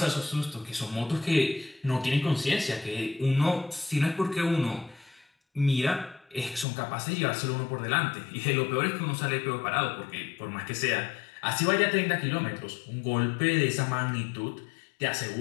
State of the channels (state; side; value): drops out; right; at 6.7 s